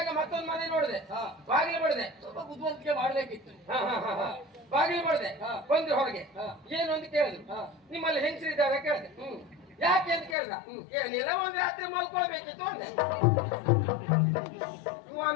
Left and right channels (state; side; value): drops out; right; at 10.4 s